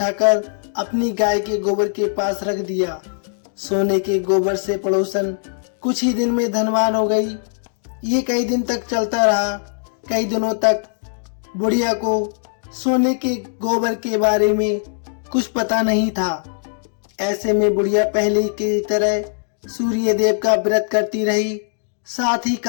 अपनी गाय के गोबर के पास रख दिया। सोने के गोबर से पड़ोसन कुछ ही दिन में धनवान हो गई। ये कई दिन तक चलता रहा। कई दिनों तक बुढ़िया को सोने के गोबर के बारे में कुछ पता नहीं था। ऐसे में बुढ़िया पहले की तरह सूर्यदेव का व्रत करती रही, साथ ही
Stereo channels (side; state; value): right; silent; digital silence